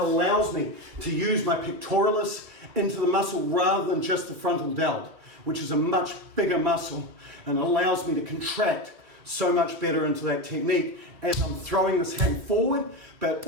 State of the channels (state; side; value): late; left; 2.5 ms